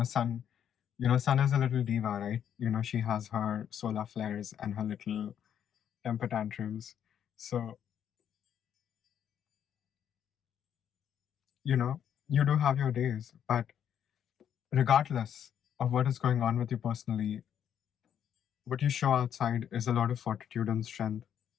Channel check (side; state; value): right; quieter; 9.2 dB